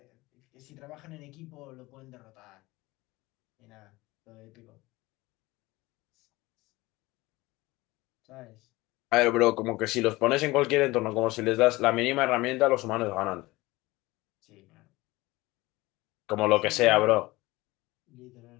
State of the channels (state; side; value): quieter; right; 20.5 dB